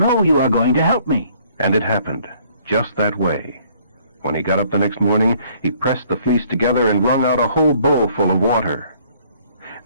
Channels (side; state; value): both; inverted; correlation -0.61